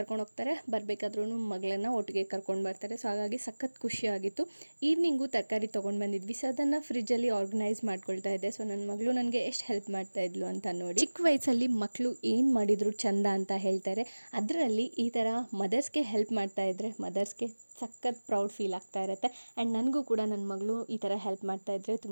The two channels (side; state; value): both; inverted; correlation -1.00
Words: ಹೋಗ್ತಾರೆ, ಬರಬೇಕಾದ್ರೂ ಮಗಳನ್ನು ಒಟ್ಟಿಗೆ ಕರ್ಕೊಂಡು ಬರ್ತಾರೆ. ಸೊ ಹಾಗಾಗಿ ಸಖತ್ ಖುಷಿಯಾಗಿತ್ತು. ಈವ್ನಿಂಗು ತರಕಾರಿ ತೊಗೊಂಡು ಬಂದಿದ್ವಿ. ಸೊ ಅದನ್ನು ಫ್ರಿಜ್ಜಲ್ಲಿ ಆರ್ಗನೈಸ್ ಮಾಡ್ಕೊಳ್ತಾ ಇದ್ದೆ. ಸೊ ನನ್ನ ಮಗಳು ನನಗೆ ಎಷ್ಟು ಹೆಲ್ಪ್ ಮಾಡ್ತಾ ಇದ್ಲು ಅಂತ ನೋಡಿ. ಚಿಕ್ಕ ವಯಸ್ಸಲ್ಲಿ ಮಕ್ಕಳು ಏನು ಮಾಡಿದ್ರು ಚಂದ ಅಂತ ಹೇಳ್ತಾರೆ. ಅದರಲ್ಲಿ ಈ ಥರ ಮದರ್ಸ್ಗೆ ಹೆಲ್ಪ್ ಮಾಡ್ತಾ ಇದ್ದರೆ ಮದರ್ಸ್ಗೆ ಸಖತ್ ಪ್ರೌಡ್ ಫೀಲ್ ಆಗ್ತಾ ಇರುತ್ತೆ. ಆ್ಯಂಡ್ ನನಗೂ ಕೂಡ ನನ್ನ ಮಗಳು ಈ ಥರ ಹೆಲ್ಪ್ ಮಾಡ್ತಾ ಇದ್ದರೆ